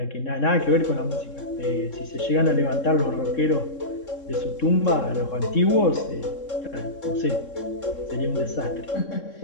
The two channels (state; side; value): late; right; 3.7 ms